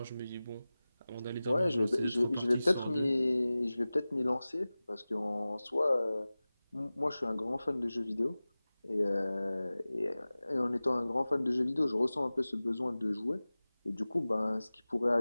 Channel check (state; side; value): inverted; both; correlation -0.98